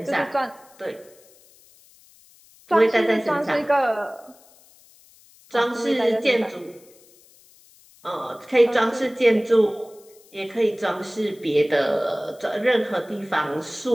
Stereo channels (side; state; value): left; noise; hiss, 27 dB below the sound